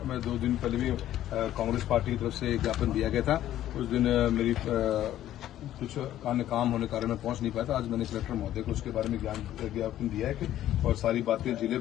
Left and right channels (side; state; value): right; quieter; 12.6 dB